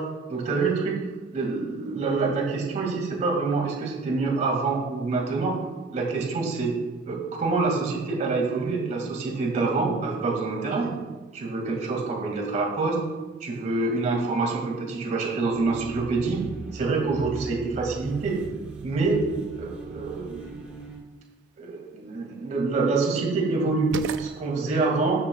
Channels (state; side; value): quieter; left; 3.4 dB